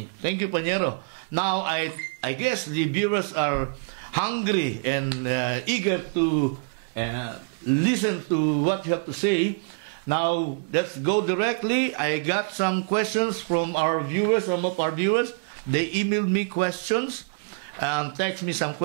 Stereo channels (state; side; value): quieter; left; 33.7 dB